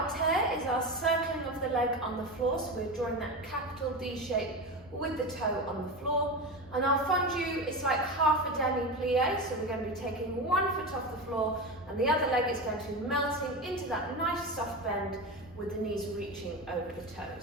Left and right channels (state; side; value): normal; both; correlation 0.22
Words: is our circling of the leg on the floor, so we're drawing that capital D shape with the toe on the floor. And our fondu is like half a demi-plie, so we're going to be taking one foot off the floor and the other leg is going to be melting into that nice soft bend with the knees reaching over the